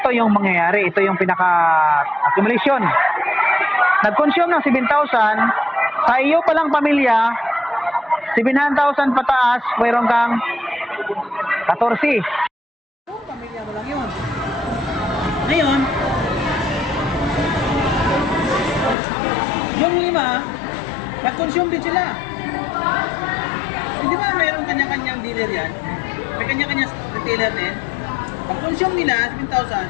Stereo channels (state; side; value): drops out; right; at 18.9 s